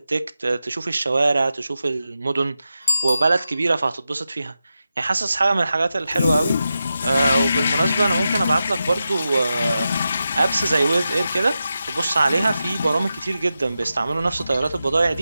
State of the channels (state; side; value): inverted; both; correlation -0.90